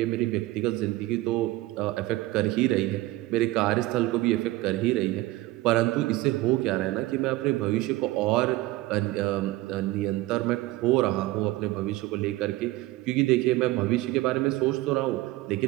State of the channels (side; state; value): left; quieter; 18.5 dB